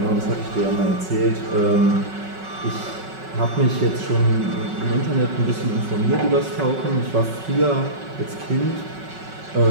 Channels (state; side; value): late; left; 5.4 ms